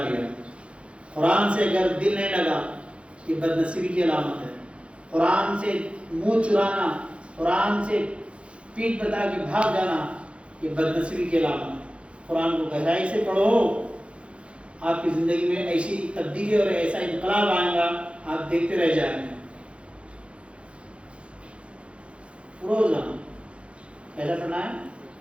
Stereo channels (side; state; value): left; late; 0.060 ms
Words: ہے۔ قرآن سے اگر دل نہیں لگا یہ بدنصیبی کی علامت ہے۔ قرآن سے منہ چرانا، قرآن سے پیٹھ بتا کے بھاگ جانا یہ بدنصیبی کی علامت ہے۔ قرآن کو گہرائی سے پڑھو، آپ کی زندگی میں ایسی تبدیلی اور ایسا انقلاب آئے گا، آپ دیکھتے رہ جائیں گے۔ روزانہ ایسا پڑھنا ہے،